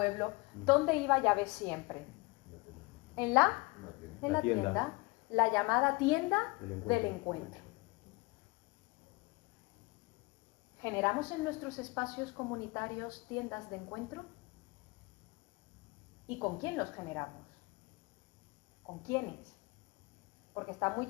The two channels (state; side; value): quieter; right; 25.6 dB